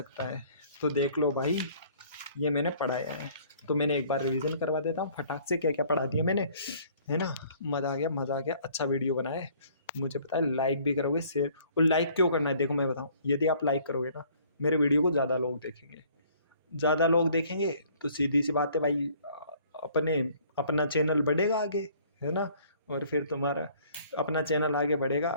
है। तो देख लो भाई, ये मैंने पढ़ाया है, तो मैंने एक बार रिवीजन करवा देता हूँ फटाक से, क्या क्या पढ़ा दिया मैंने, है ना। मज़ा आ गया, मज़ा आ गया, अच्छा वीडियो बनाया है, मुझे पता है लाइक भी करोगे, शेयर। और लाइक क्यों करना है, देखो मैं बताऊँ, यदि आप लाइक करोगे ना, मेरे वीडियो को ज़्यादा लोग देखेंगे, ज़्यादा लोग देखेंगे तो सीधी सी बात है भाई, अपने अपना चैनल बढ़ेगा आगे, है ना। और फिर तुम्हारा अपना चैनल आगे बढ़ेगा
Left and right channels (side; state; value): both; inverted; correlation -0.57